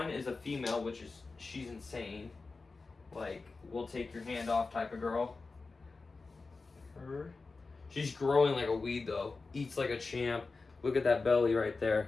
is a female, which is, she's insane. Like, will take your hand off type of girl. She's growing like a weed though. Eats like a champ. Look at that belly right there.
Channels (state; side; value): quieter; right; 3.9 dB